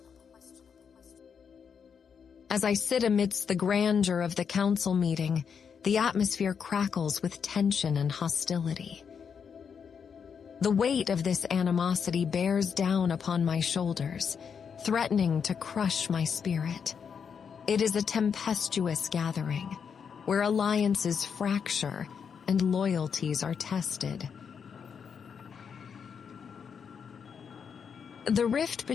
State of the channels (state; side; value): quieter; right; 6.7 dB